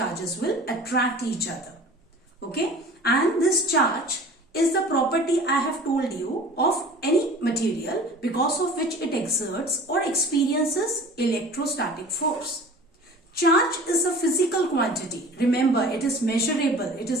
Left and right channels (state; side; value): normal; both; correlation 0.43